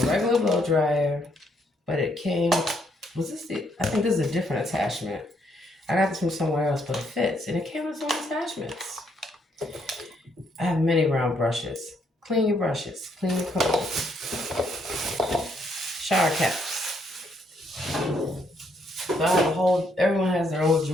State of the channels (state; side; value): normal; both; correlation 0.73